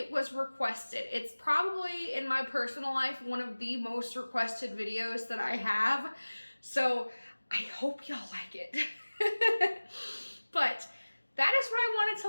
was requested. It's probably, in my personal life, one of the most requested videos that I have. So I hope y'all like it. But that is what I wanted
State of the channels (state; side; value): inverted; both; correlation -1.00